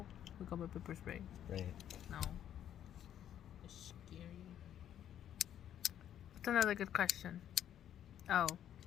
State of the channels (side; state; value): right; quieter; 10.4 dB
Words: I got my pepper spray. Right. No. It's scary. What's another good question? Oh.